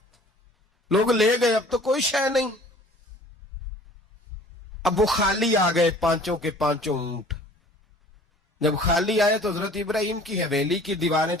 لوگ لے گئے، اب تو کوئی شے نہیں۔ اب وہ خالی آ گئے، 5 کے 5 اونٹ۔ جب خالی آئے تو حضرت ابراہیم کی حویلی کی دیواریں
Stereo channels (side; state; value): both; normal; correlation 0.49